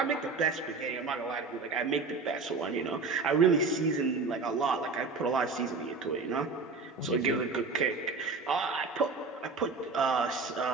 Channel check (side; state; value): left; quieter; 4.2 dB